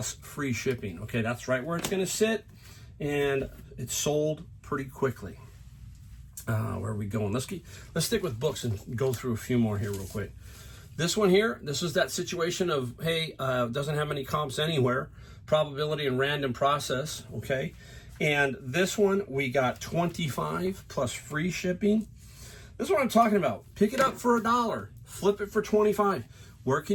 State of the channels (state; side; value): identical; both; correlation 1.00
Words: free shipping. Okay, that's right where it's going to sit, and it sold pretty quickly. Where are we going? Let's stick with books and go through a few more here real quick. This one here, this is that situation of, hey, doesn't have any comps anywhere, probability and random process, okay? And this one, we got 25 plus free shipping. This is what I'm talking about. Pick it up for $1, flip it for 25. Where